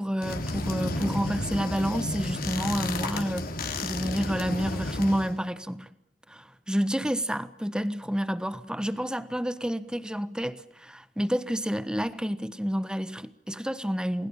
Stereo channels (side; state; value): both; normal; correlation 0.89